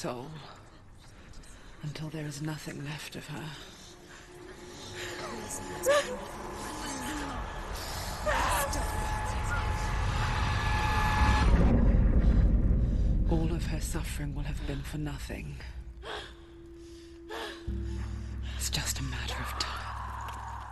until there is nothing left of her. All of her suffering will have been for nothing. It's just a matter of time.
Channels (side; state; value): both; identical; correlation 1.00